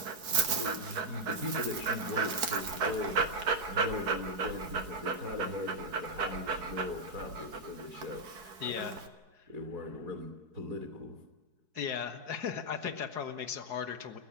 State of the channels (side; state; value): left; late; 4.7 ms